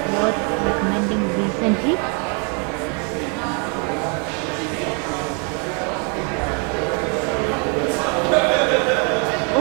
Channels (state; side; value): quieter; left; 36.6 dB